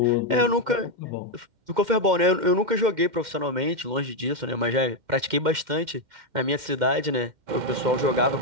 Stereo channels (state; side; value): late; left; 2.1 ms